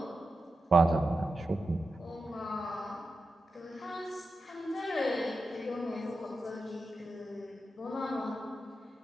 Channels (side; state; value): both; normal; correlation 0.90